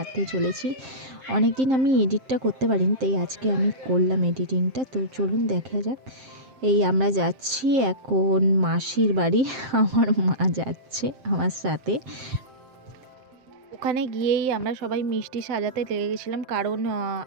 চলেছি। অনেক দিন আমি এডিটটা করতে পারিনি, তাই আজকে আমি করলাম এডিটিংটা। তো চলুন দেখা যাক। এই আমরা যাচ্ছি এখন মাসির বাড়ি। আমার মা যাচ্ছে আমার সাথে। ওখানে গিয়েই আমরা সবাই মিষ্টি সাজাতে লেগে গেছিলাম, কারণ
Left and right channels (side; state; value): left; late; 7.6 ms